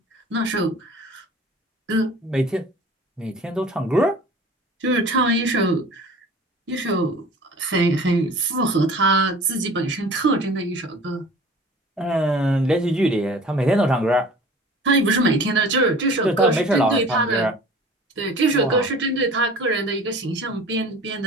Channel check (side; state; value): both; normal; correlation 0.44